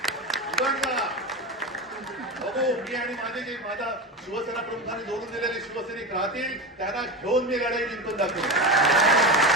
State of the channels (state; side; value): normal; both; correlation 0.22